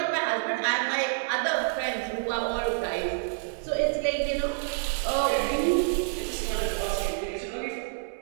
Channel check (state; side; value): silent; left; 59 dB below the other